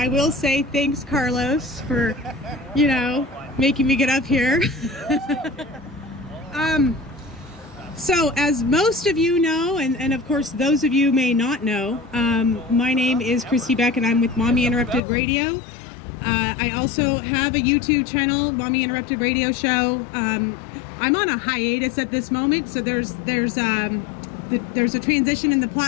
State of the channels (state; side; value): drops out; right; at 15.0 s